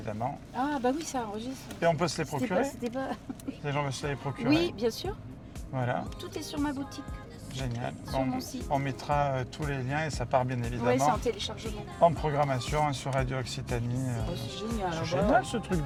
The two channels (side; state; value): both; identical; correlation 1.00